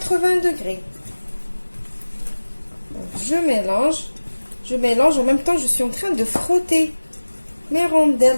degrés. Donc, je mélange, en même temps je suis en train de frotter mes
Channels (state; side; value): inverted; both; correlation -1.00